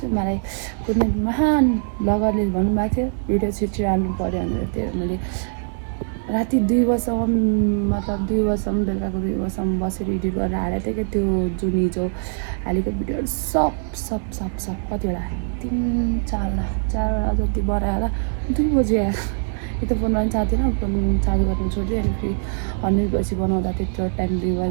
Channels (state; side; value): silent; left; digital silence